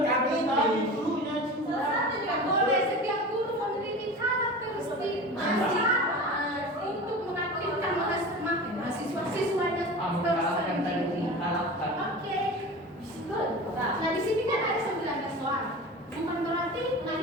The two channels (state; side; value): normal; both; correlation 0.33